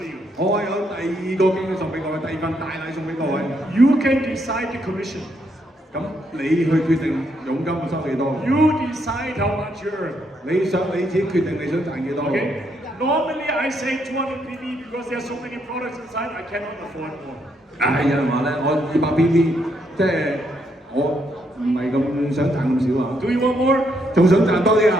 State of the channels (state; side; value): normal; both; correlation 0.75